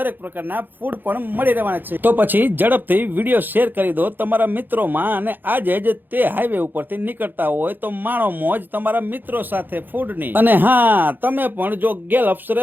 પ્રકારના ફૂડ પણ મળી રહેવાના છે. તો પછી ઝડપથી વિડીયો શેર કરી દો તમારા મિત્રોમાં, અને આજે જ તે હાઈવે ઉપરથી નીકળતા હોય તો માણો મોજ તમારા મિત્રો સાથે ફૂડની. અને હા, તમે પણ જો ગેલપ્સ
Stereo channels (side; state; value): left; late; 0.091 ms